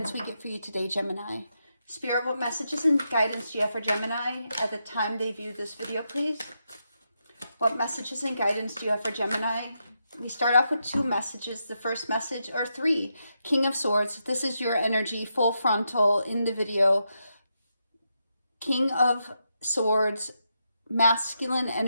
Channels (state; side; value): inverted; both; correlation -0.84